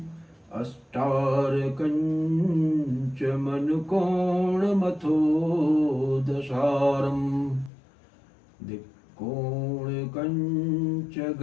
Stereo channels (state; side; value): drops out; right; at 7.7 s